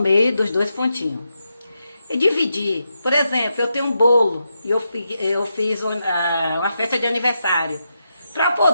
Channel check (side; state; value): both; inverted; correlation -0.85